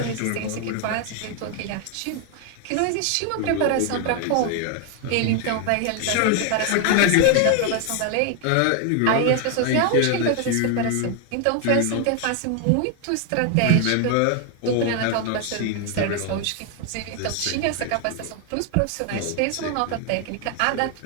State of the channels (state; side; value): different; both; correlation 0.01